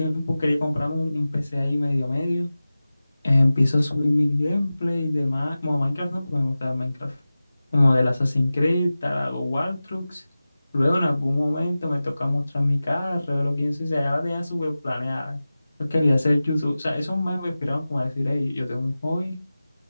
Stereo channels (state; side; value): inverted; both; correlation -0.96